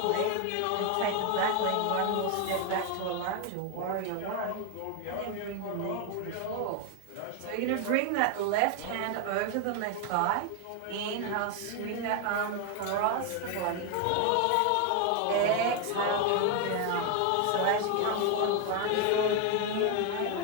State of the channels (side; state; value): both; different; correlation 0.01